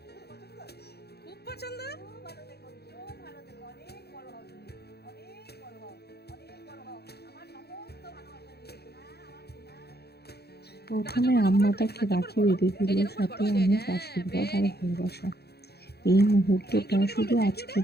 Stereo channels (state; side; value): late; right; 0.47 ms